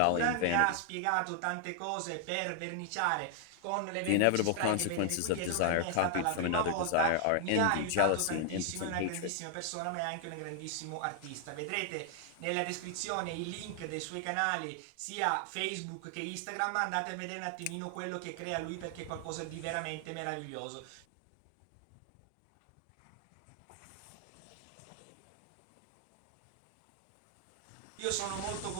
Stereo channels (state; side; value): different; both; correlation 0.00